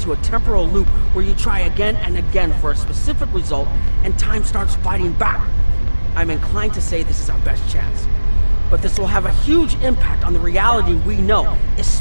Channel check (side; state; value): both; inverted; correlation -1.00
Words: a temporal loop where you try again and again for a specific result, and time starts fighting back. I'm inclined to say this is our best chance. But this will have a huge impact on the reality we know,